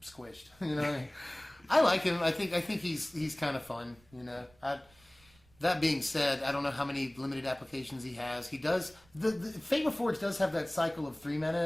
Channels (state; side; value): noise; right; rumble, 29 dB below the sound